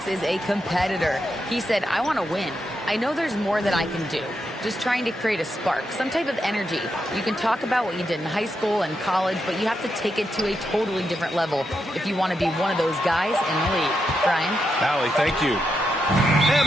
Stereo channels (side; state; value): both; normal; correlation 0.84